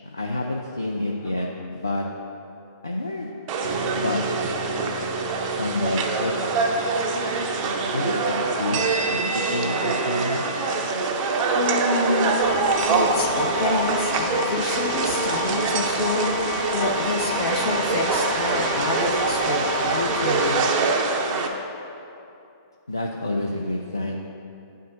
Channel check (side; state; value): both; inverted; correlation -0.34